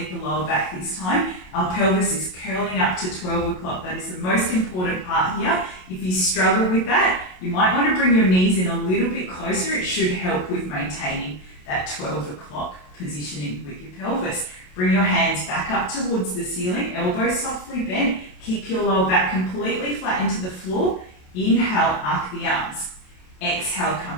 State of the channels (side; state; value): right; late; 27 ms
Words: the lower back this time. Our pelvis is curling up to 12 o'clock. That is the most important part here. If you struggle with that, you might want to bring your knees in a little bit closer. It should help with maintaining that 12 o'clock positioning with your pelvis. Bring your hands back up towards the ceiling, elbows softly bent. Keep your lower back completely flat into the floor. Inhale, arc the arms. Exhale,